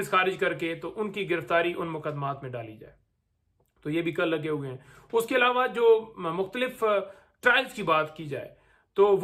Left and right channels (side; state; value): both; identical; correlation 1.00